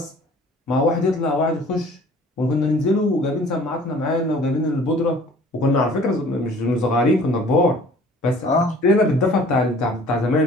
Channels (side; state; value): both; normal; correlation 0.51